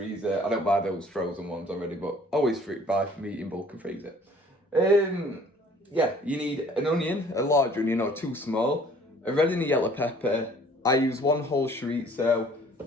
I don't buy those frozen ones already, but always buy meat in bulk and freeze it. Yeah, you need an onion, a large onion or 2 small, a red and a yellow pepper. I use 1 whole chorizo,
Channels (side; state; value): both; normal; correlation 0.54